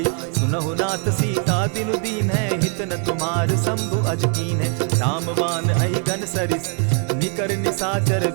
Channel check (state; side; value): quieter; left; 39.6 dB